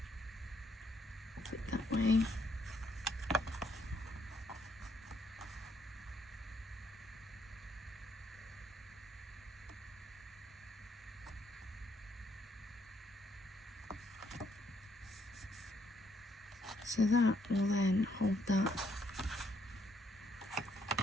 put it that way. So that will then hold that.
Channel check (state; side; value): normal; both; correlation 0.71